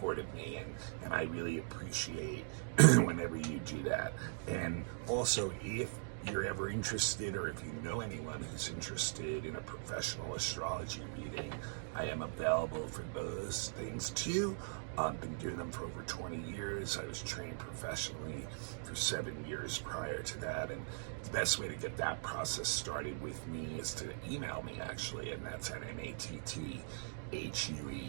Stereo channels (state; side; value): silent; left; digital silence